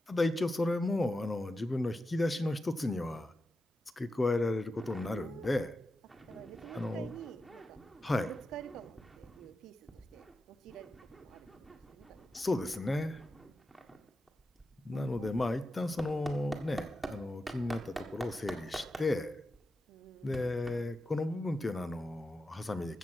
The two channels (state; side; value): normal; both; correlation 0.90